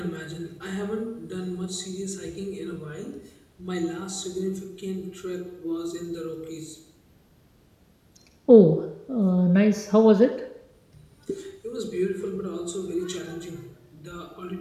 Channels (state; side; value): identical; both; correlation 1.00